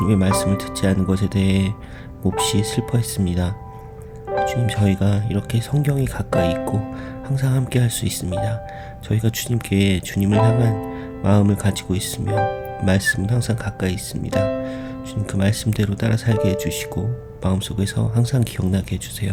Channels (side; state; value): both; identical; correlation 1.00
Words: 말씀을 듣지 않은 것에 대해 몹시 슬퍼했습니다. 주님, 저희가 이렇게 성경이 가까이 있고 항상 함께 할 수 있습니다. 저희가 주님께 주님을 향한 마음을 가지고 있으면 말씀은 항상 가까이 있습니다. 주님, 그 말씀대로 따라 살게 해주시고 마음속에서 항상 기억나게 해주세요.